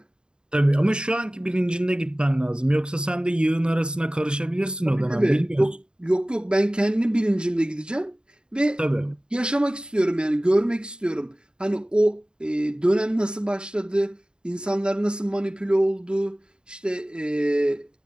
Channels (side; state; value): left; late; 0.049 ms